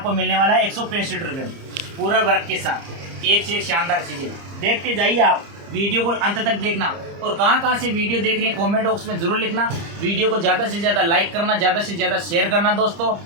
मिलने वाला है 165 रुपये में, पूरा वर्क के साथ। एक से एक शानदार चीज़ें देखते जाइए आप, वीडियो को अंत तक देखना। और कहाँ से वीडियो देख रहे हैं कमेंट बॉक्स में जरूर लिखना। वीडियो को ज़्यादा से ज़्यादा लाइक करना, ज़्यादा से ज़्यादा शेयर करना दोस्तों।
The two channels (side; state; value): left; late; 30 ms